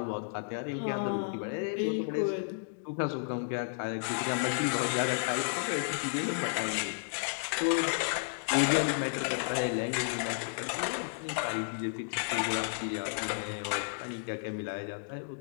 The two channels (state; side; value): silent; right; digital silence